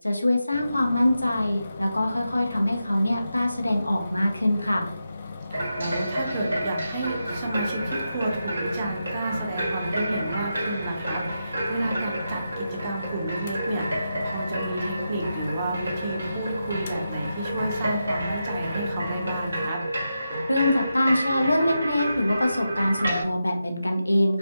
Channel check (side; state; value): both; inverted; correlation -0.87